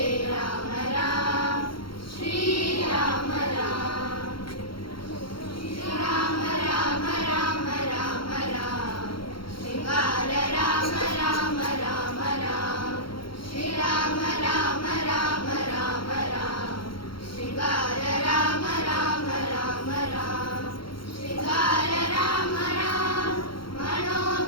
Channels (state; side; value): late; right; 0.73 ms